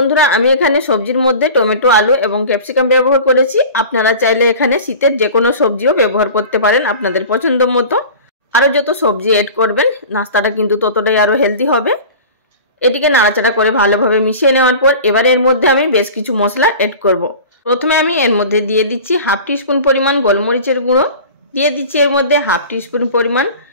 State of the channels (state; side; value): inverted; both; correlation -0.38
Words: আমি এখানে সবজির মধ্যে টমেটো, আলু এবং ক্যাপসিকাম ব্যবহার করেছি। আপনারা চাইলে এখানে শীতের যে কোনো সবজিও ব্যবহার করতে পারেন আপনাদের পছন্দ মতো। আরও যত সবজি এড করবেন নাস্তাটা কিন্তু ততটাই আরও হেলদি হবে। এটিকে নাড়াচাড়া করে ভালোভাবে মিশিয়ে নেওয়ার পর এবারে এর মধ্যে আমি বেশ কিছু মশলা এড করব। প্রথমে আমি এর মধ্যে দিয়ে দিচ্ছি হাফ টিস্পুন পরিমাণ গোলমরিচের গুঁড়ো, দিয়ে দিচ্ছি এর মধ্যে হাফ টিস্পুন পরিমাণ